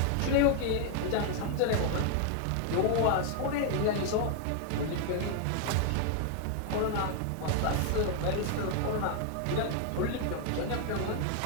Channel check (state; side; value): different; both; correlation 0.00